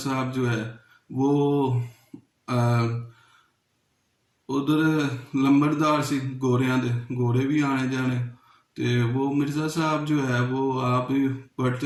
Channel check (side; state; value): both; identical; correlation 1.00